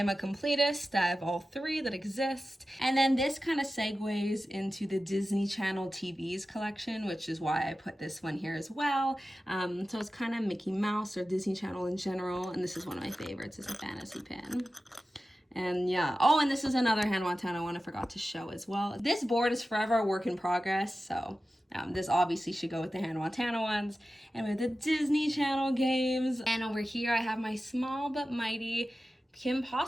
a Completist. I have all 3 that exist. And then this kind of segues into the Disney Channel TVs collection, which is why I put this one here as well. So it's kind of Mickey Mouse or Disney Channel in general, and this is one of my favorites. It's a fantasy pin. And yeah, and this is another Hannah Montana one I forgot to show as well. This board is forever a work in progress, so this obviously should go with the Hannah Montana ones. And with the Disney Channel games. And over here I have my small but mighty Kim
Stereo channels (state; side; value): normal; both; correlation 0.94